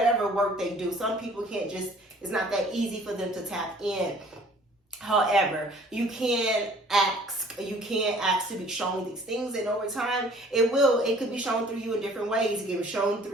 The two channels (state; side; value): normal; both; correlation 0.54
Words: work they do. Some people can't just, it's not that easy for them to tap in. However, you can ask to be shown these things, and over time it could be shown through you in different ways. It can be shown